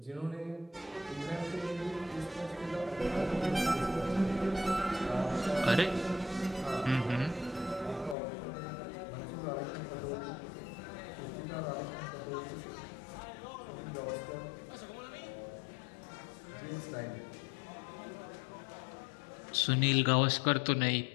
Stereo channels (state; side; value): drops out; right; at 8.2 s